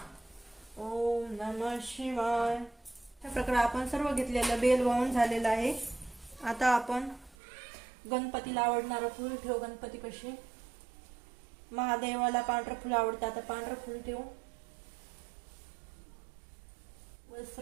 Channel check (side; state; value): left; drops out; at 7.4 s